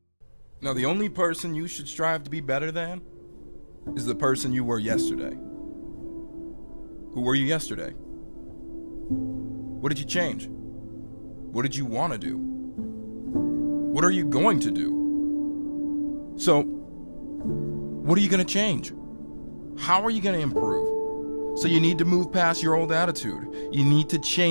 Now, the only person you should strive to be better than is the person you were yesterday. Who were you yesterday? What did you change? What did you want to do? What are you going to do? So, what are you going to change? How are you going to improve? So you need to move past your old attitude. You need to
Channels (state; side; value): inverted; both; correlation -1.00